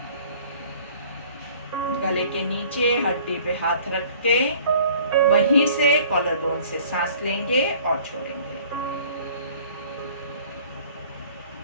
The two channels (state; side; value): inverted; both; correlation -0.52